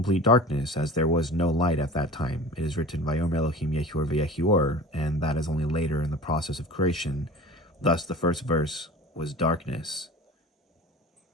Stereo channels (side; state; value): both; normal; correlation 0.38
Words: darkness, as there was no light at that time. It is written, Vayomer Elohim Yehior v'Yehior, and that is only later in the process of creation. Thus, the first verse was darkness.